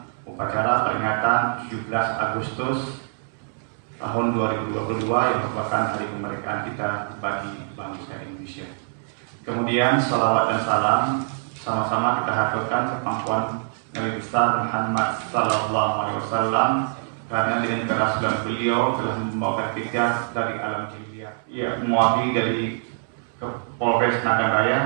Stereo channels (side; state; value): left; silent; digital silence